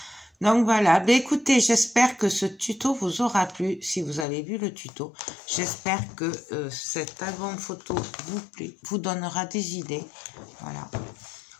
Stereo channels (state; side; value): drops out; right; at 4.2 s